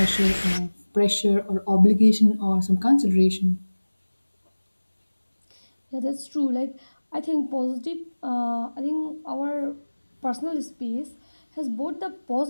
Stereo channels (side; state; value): both; inverted; correlation -1.00